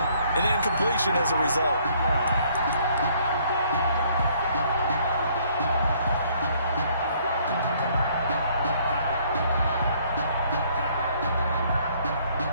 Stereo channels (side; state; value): both; inverted; correlation -0.63